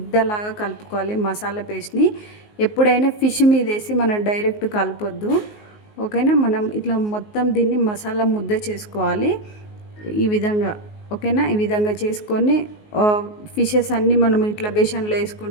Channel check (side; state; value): right; late; 19 ms